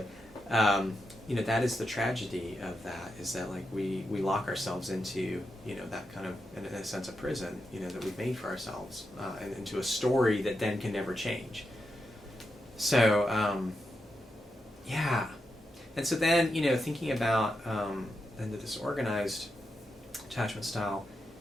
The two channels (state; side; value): normal; both; correlation 0.86